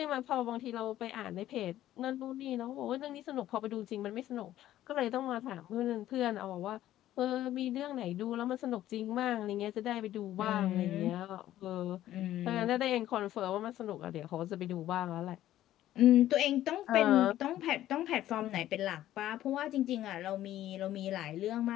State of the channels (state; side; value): quieter; right; 13.3 dB